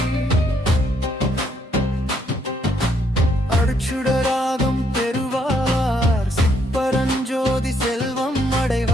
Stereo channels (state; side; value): normal; both; correlation 0.71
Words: அருட்சுடராகம் பெறுவார் சிப்பரஞ்சோதி செல்வம்